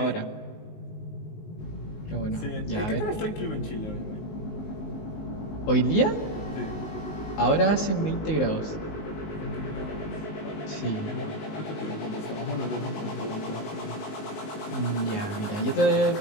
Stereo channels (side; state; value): right; late; 19 ms